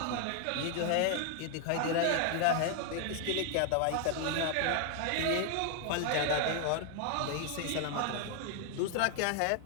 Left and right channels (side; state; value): both; different; correlation 0.00